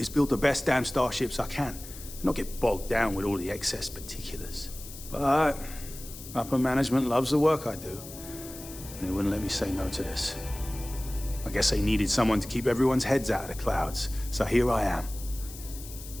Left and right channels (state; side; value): noise; left; hiss, 14 dB below the sound